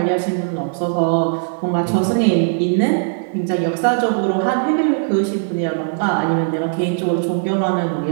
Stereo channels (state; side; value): silent; left; digital silence